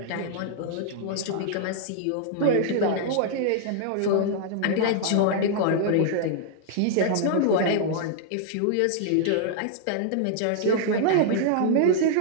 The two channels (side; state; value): both; different; correlation -0.01